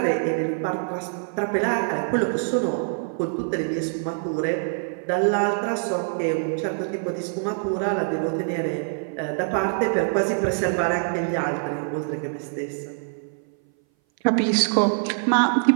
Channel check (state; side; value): silent; left; 59 dB below the other